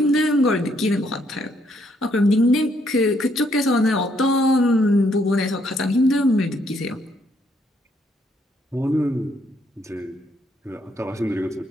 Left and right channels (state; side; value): normal; both; correlation 0.71